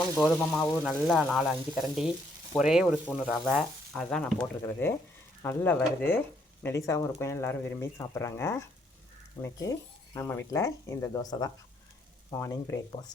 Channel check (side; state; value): both; normal; correlation 0.70